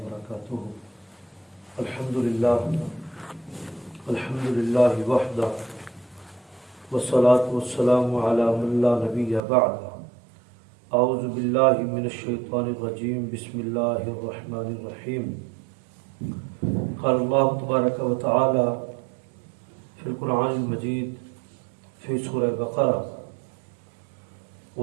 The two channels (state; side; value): drops out; left; at 9.4 s